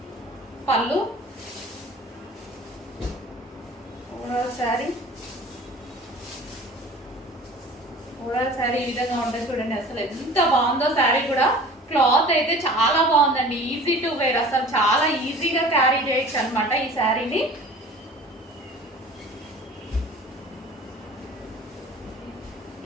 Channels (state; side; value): normal; both; correlation 0.43